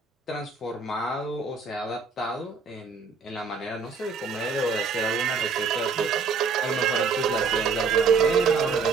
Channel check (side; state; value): left; quieter; 5.0 dB